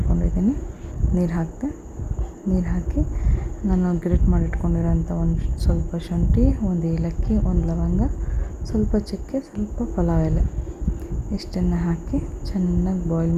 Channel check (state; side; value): identical; both; correlation 1.00